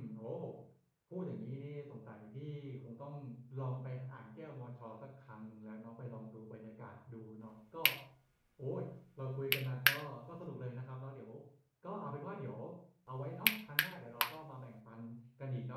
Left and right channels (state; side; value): identical; both; correlation 1.00